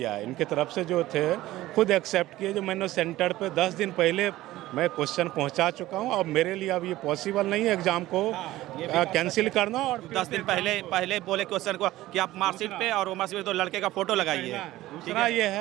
है, इनके तरफ से जो थे खुद एक्सेप्ट किए। जो मैंने सेंटर पे 10 दिन पहले मैं क्वेश्चन पहुंचा चुका हूं, अब मेरे लिए अब ये पॉसिबल नहीं है एग्जाम को कैंसिल करना। और 10 दिन पहले बोले क्वेश्चन को कि आप मार्कशीट पे और मार्कशीट पे तो लड़के का फोटो लगाइए। दूसरा ये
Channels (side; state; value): left; quieter; 16.3 dB